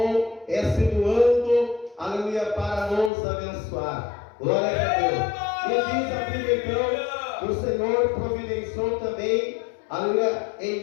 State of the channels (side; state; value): right; drops out; at 3.1 s